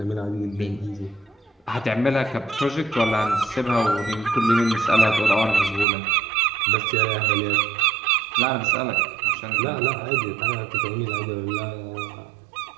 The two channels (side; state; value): left; drops out; at 5.9 s